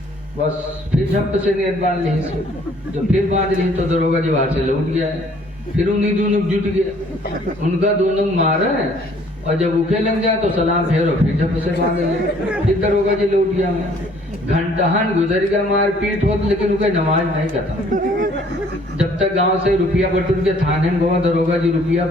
बस फिर झप से नेत बांध ली जब फिर बांध ली तो दरोगा जी वहां से लौट गया है फिर उन्हीं दोनों जुट गया उनका दोनों मारा है और जब उके लग जाए तो सलाम फेरो फिर झप से बांध ले फिर दरोगा जी लौट गया मैं घंटाहन गुजर गया मार पीट हो लेकिन उनका नमाज नहीं खत्म जब तक गांव से रुपया बटूर के थाने में गवा दरोगा जी रुपया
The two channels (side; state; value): both; normal; correlation 0.59